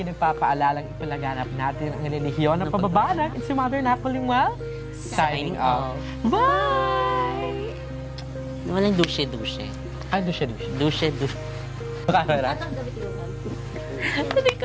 nagpapaalalang ipalaganap natin ang relihiyon ng pababanag. It's your mother Nakba Limuel, signing off. Bye! Walang dushe-dushe. Dushe. Dushe-dushe. Camera. Atang gabi tinukan. Hindi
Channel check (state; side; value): identical; both; correlation 1.00